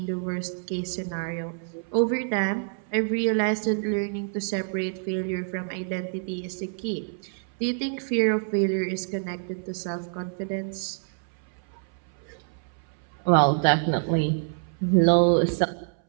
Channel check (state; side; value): silent; left; 60 dB below the other